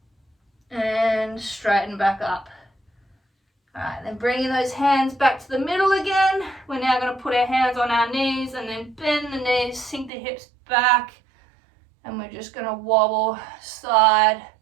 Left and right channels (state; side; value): drops out; left; at 10.1 s